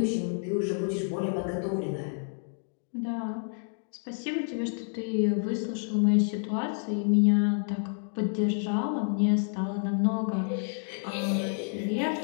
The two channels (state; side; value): silent; right; 58 dB below the other